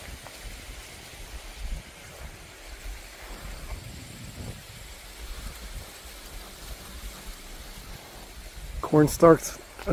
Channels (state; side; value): identical; both; correlation 1.00